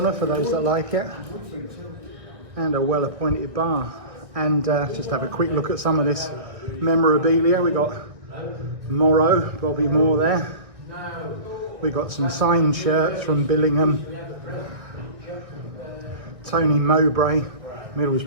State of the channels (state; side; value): late; left; 1.6 ms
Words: for those that like it, and a well appointed bar. And just have a quick look at some of this memorabilia. We got Morrow, Bobby Moore there. We got some signed shirts from Billingham, Tony Mowbray,